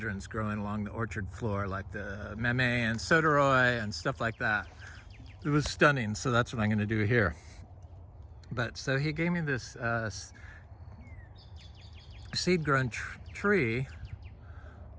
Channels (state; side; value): identical; both; correlation 1.00